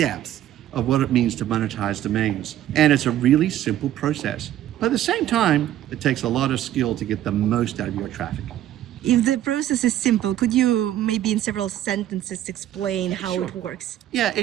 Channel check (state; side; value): quieter; left; 12.4 dB